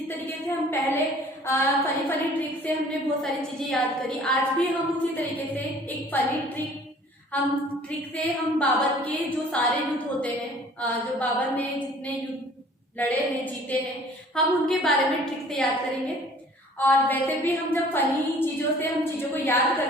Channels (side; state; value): both; normal; correlation 0.52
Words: तरीके से हम पहले फनी फनी ट्रिक से हमने बहुत सारी चीजें याद करी, आज भी हम उसी तरीके से एक फनी ट्रिक से हम बाबर के जो सारे युद्ध होते हैं, जो बाबर ने जितने युद्ध लड़े हैं, जीते हैं, हम उनके बारे में ट्रिक से याद करेंगे। और वैसे भी हम जब फनी चीजों से हम चीजों को याद